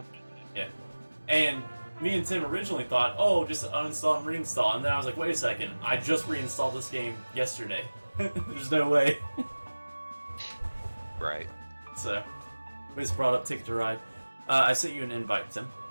Yeah. And me and Tim originally thought, oh, just uninstall and reinstall, and then I was like, wait a second, I just reinstalled this game yesterday. There's no way. Right. So, we just brought up Ticket to Ride. I sent you an invite, Tim.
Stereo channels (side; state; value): both; inverted; correlation -1.00